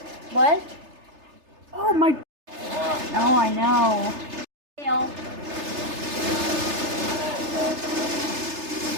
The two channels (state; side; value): late; left; 3.3 ms